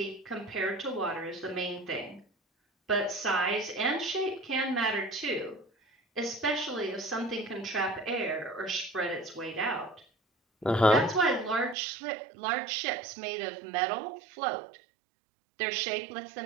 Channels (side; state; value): left; drops out; at 11.8 s